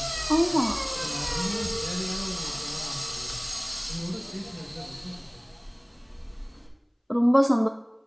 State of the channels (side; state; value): both; identical; correlation 1.00